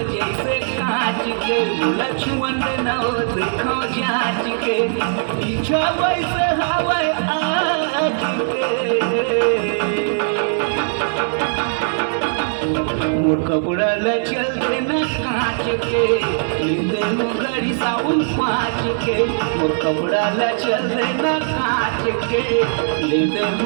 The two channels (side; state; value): left; silent; digital silence